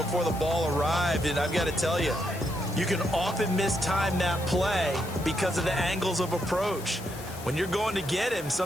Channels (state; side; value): noise; left; hiss, 15 dB below the sound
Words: the ball arrived. And I've got to tell you, you can often mistime that play because of the angles of approach. When you're going to get him,